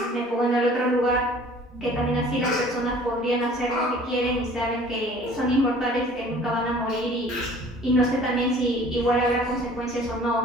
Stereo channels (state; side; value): normal; both; correlation 0.50